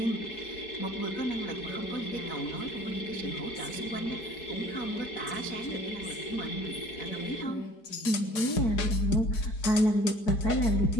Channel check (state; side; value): late; right; 4.7 ms